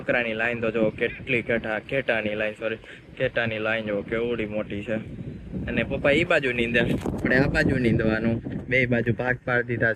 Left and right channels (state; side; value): identical; both; correlation 1.00